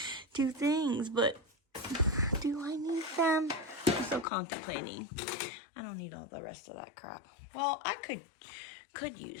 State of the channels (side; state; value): right; drops out; at 4.2 s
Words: two things, but do I need them? I'm still contemplating. I don't need all the rest of that crap. Well, I could